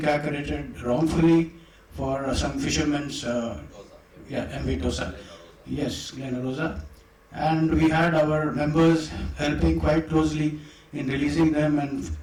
wrongfully for some fishermen's, MV Dosa. Yes, Glen Rosa. And we had our members helping quite closely in releasing them, and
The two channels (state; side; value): identical; both; correlation 1.00